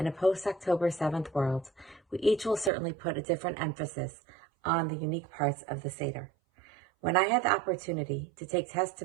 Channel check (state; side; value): drops out; left; at 2.7 s